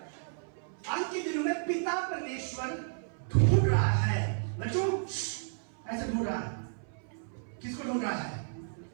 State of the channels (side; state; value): left; silent; 56 dB below the other